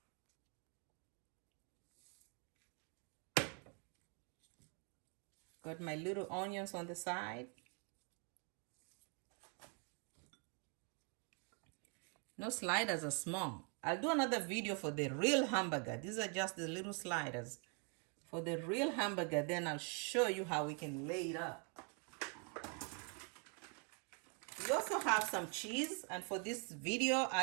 Got my little onions on the side. No, sliders are small. I'll do another video for the real hamburger. These are just the little sliders. For the real hamburger, then I'll show you how we can lay it up. We also have some cheese, and for this video,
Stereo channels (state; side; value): quieter; left; 37.9 dB